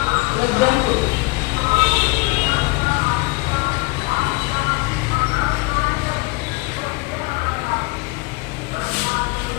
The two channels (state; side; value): quieter; right; 25.8 dB